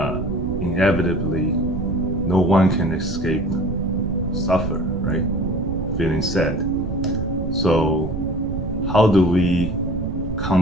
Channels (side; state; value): right; noise; rumble, 5 dB below the sound